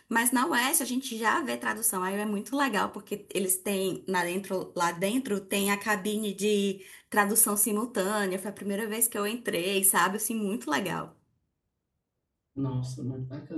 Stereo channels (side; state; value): both; identical; correlation 1.00